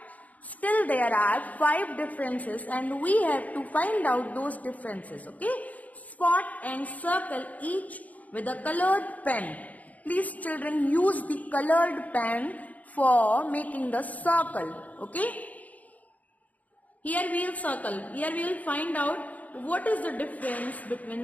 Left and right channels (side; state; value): right; late; 0.075 ms